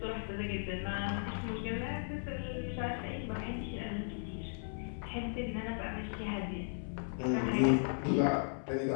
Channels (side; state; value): right; silent; 53 dB below the other